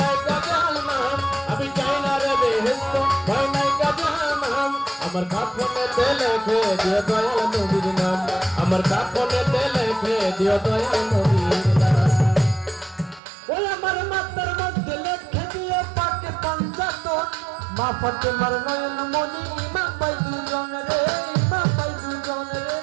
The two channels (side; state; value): left; drops out; at 13.2 s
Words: নাই তো জাহান্নাম আমি চাই না রে বেহেশত ভয় নাই তো জাহান্নাম আমার কাফনেতে লিখে দিও দয়াল নবীর নাম আমার কাফনেতে লিখে দিও দয়াল নবীর নাম ওই আমার মাথার মধ্যে লিখে দিও পাকে পাঞ্জাতন মা ফাতেমার নয়ন মনি ইমাম ভাই দুজন রে ইমাম ভাই দুজন রে